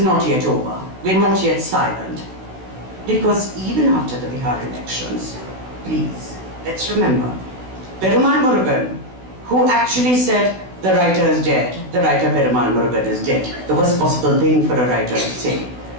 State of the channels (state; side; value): late; left; 16 ms